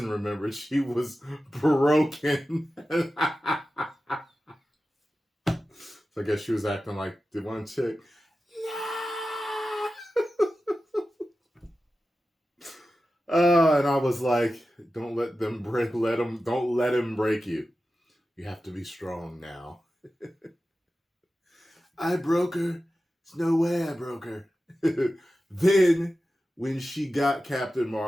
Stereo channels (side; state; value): both; normal; correlation 0.94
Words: remembered she was broken. So I guess she was acting like the one chick. And I was like, don't let him break you. You have to be strong now. I broke her. There's no way I broke her. Then, when she got Captain